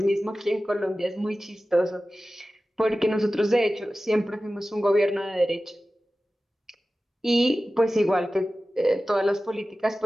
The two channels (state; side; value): normal; both; correlation 0.95